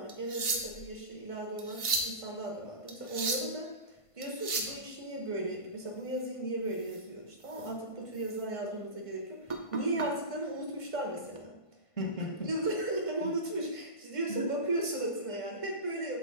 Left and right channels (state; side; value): late; right; 1.5 ms